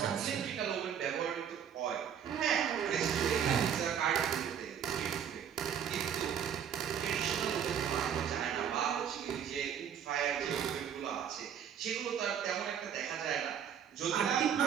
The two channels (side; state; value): left; quieter; 8.5 dB